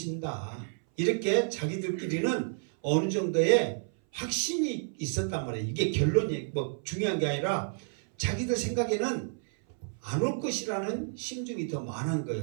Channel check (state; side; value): silent; left; 58 dB below the other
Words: 이렇게 자기들끼리는 어느 정도의 확신이 있었단 말이에요. 이게 결론이 중요한 게 아니라 자기들 생각에는 안 올 것이라는 심정이 더 많은